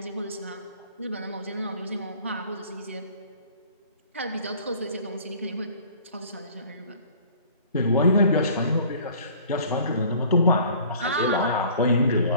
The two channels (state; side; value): inverted; both; correlation -0.51